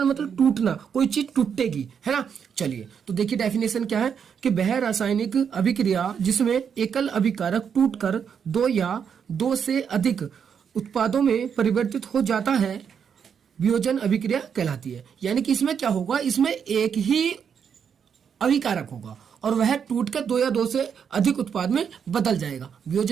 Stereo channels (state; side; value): quieter; left; 7.3 dB